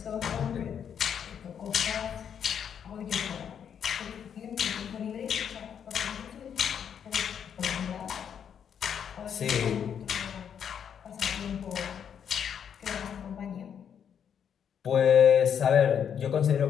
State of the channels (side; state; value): right; quieter; 8.2 dB